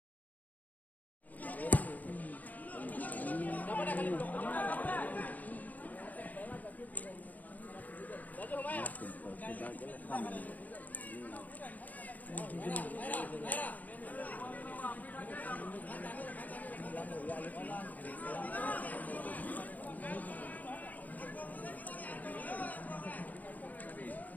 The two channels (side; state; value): right; late; 0.079 ms